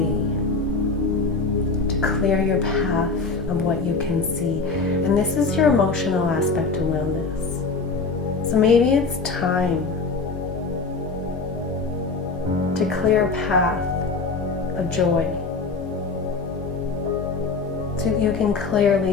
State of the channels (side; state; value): right; quieter; 4.2 dB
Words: to clear your path of what you can see? And this is your emotional aspect of wellness. So maybe it's time to clear a path of joy so that you can